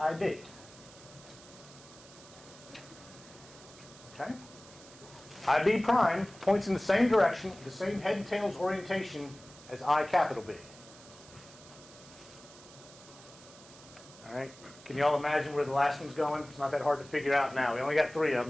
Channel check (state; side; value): noise; right; hiss, 20 dB below the sound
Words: Okay? IB prime points in the same direction, the same head and tails orientation as I capital B. All right? Can you all imagine where the last one's going? It's not that hard to figure out now. We only got 3 of